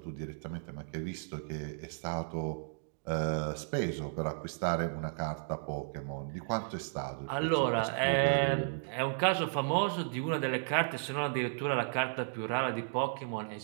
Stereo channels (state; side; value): silent; left; digital silence